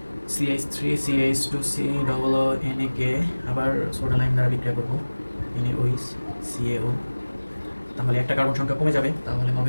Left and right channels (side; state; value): both; inverted; correlation -1.00